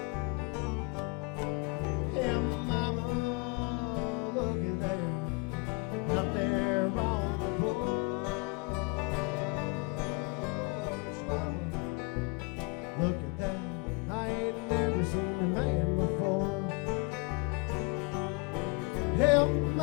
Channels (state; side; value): quieter; right; 28.4 dB